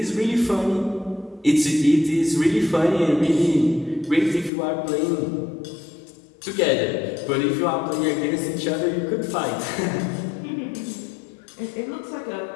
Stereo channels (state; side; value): drops out; right; at 4.5 s